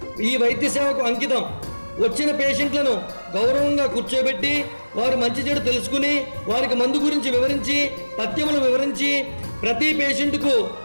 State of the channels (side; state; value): both; inverted; correlation -1.00